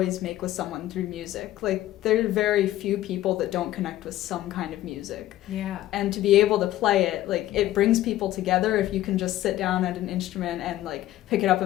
make with someone through music. There are very few people that don't connect with some kind of music. Yeah. And to be able to play it, it brings people together if you can just sit down at an instrument and pick it up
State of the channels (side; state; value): right; quieter; 14.4 dB